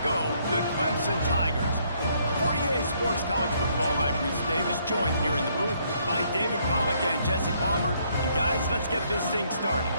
the Clemson Tigers. For EA Sports College Football, I'm Reese Davis, joined here in the booth by David Pollack and Jesse Palmer. And guys, let's get this thing started.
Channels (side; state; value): both; inverted; correlation -0.69